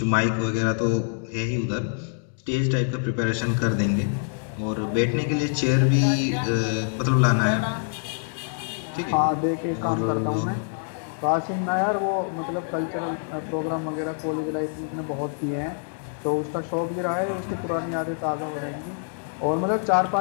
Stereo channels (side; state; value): right; silent; digital silence